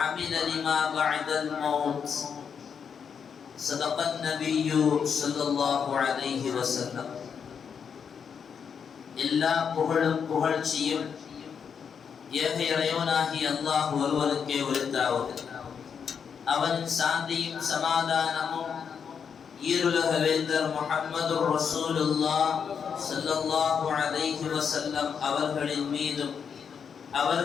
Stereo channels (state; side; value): quieter; right; 6.9 dB